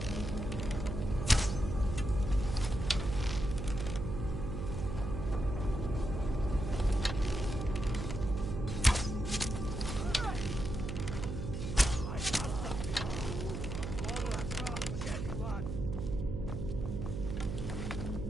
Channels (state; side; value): noise; right; hum, 4 dB below the sound